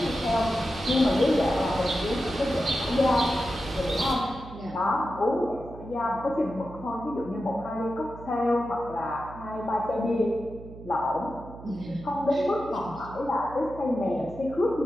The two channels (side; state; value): right; noise; hum, 15 dB below the sound